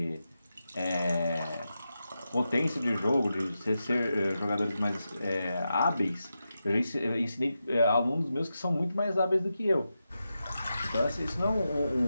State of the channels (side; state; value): both; inverted; correlation -0.89